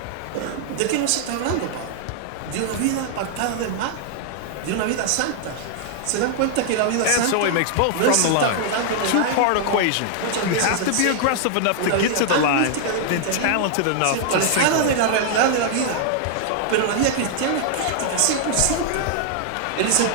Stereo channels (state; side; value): different; both; correlation 0.00